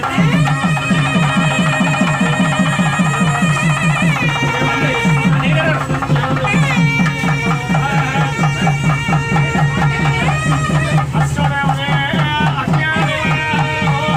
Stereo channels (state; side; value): identical; both; correlation 1.00